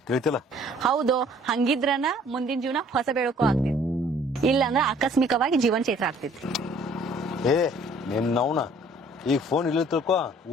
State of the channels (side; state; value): both; normal; correlation 0.56